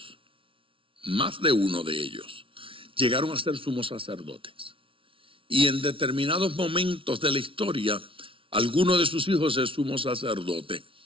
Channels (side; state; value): left; late; 0.25 ms